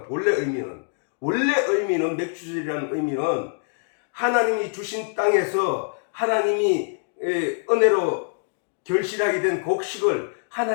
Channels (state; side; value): silent; right; digital silence